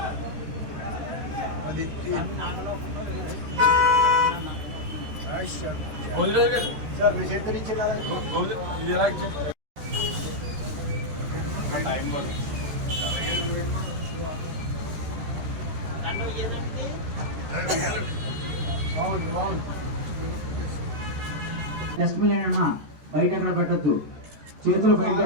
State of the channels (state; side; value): late; left; 13 ms